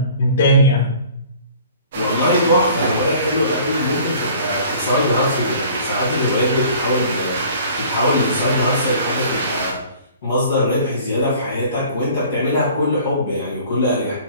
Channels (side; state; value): both; inverted; correlation -0.49